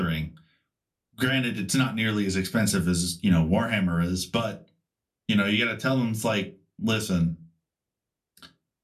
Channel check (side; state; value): both; identical; correlation 1.00